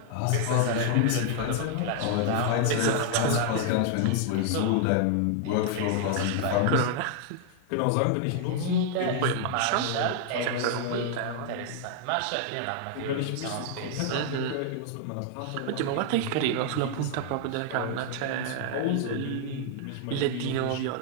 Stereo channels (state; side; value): different; both; correlation -0.01